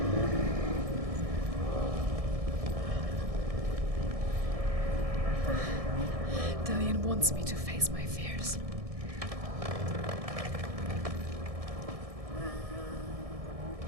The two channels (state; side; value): late; left; 1.6 ms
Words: Dillian wants me to face my fears.